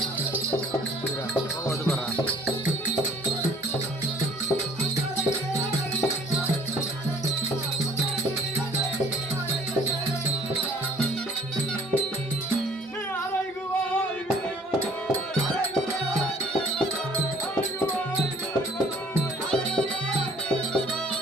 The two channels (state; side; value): normal; both; correlation 0.55